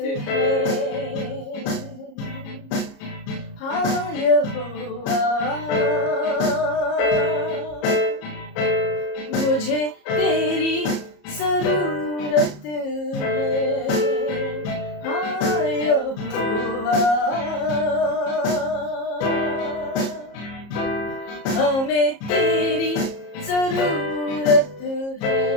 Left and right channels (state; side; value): late; right; 34 ms